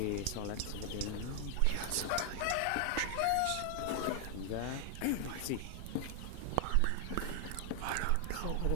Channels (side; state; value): both; different; correlation 0.00